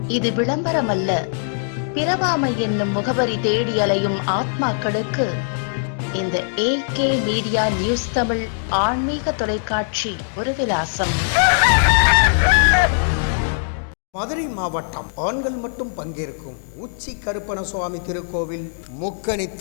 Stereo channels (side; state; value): right; silent; digital silence